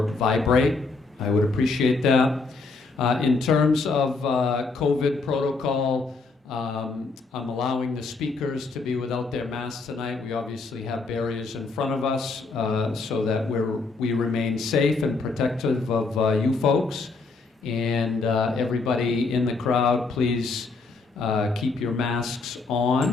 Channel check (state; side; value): quieter; right; 4.0 dB